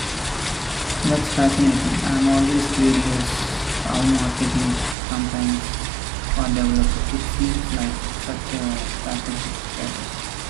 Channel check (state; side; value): drops out; left; at 5.0 s